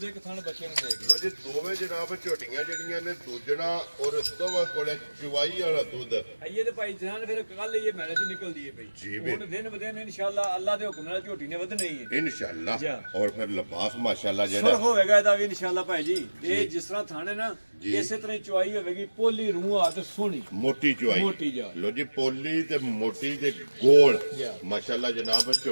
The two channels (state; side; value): inverted; both; correlation -1.00